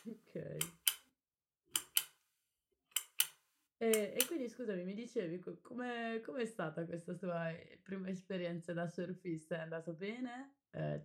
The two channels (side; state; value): both; identical; correlation 1.00